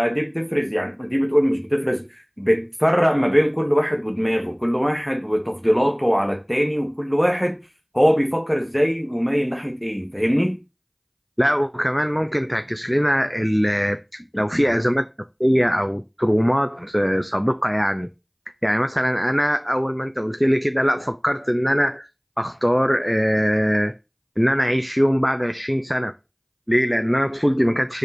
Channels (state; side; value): identical; both; correlation 1.00